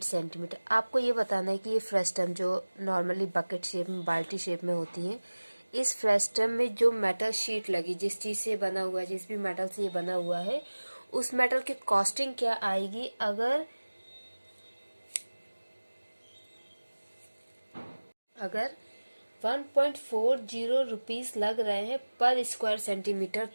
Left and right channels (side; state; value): both; inverted; correlation -1.00